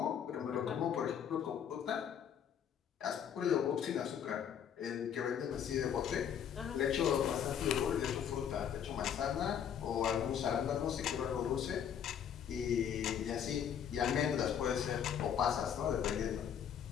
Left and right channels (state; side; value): quieter; right; 8.6 dB